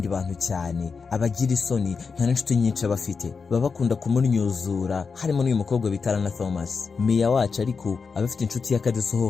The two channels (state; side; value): quieter; right; 5.2 dB